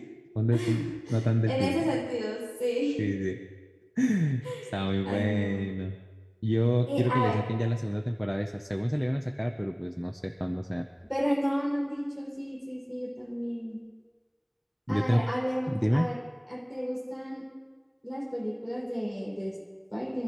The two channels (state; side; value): identical; both; correlation 1.00